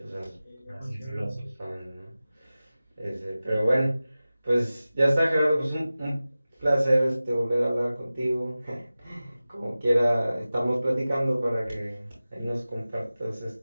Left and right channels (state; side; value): inverted; both; correlation -0.96